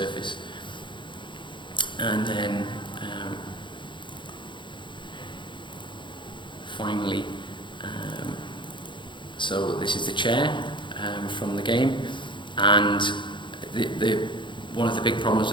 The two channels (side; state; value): right; late; 0.23 ms